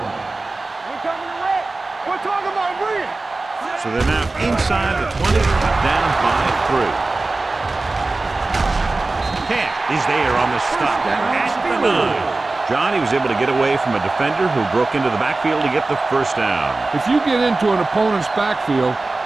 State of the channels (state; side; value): quieter; left; 3.3 dB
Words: coming to red. We're talking about bring it. So they're now inside the 20, down by 3. Camp is there on the stop at the 9. John, he was able to get away from a defender who broke into the backfield to get the first down. If you get into an opponent's backfield,